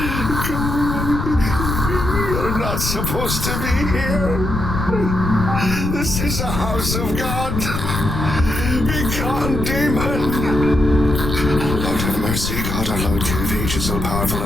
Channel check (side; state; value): left; noise; rumble, 3 dB below the sound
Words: Go away. You're not supposed to be here. This is a house of God. Be gone, demon. Lord have mercy, God our Lord, King of ages, all powerful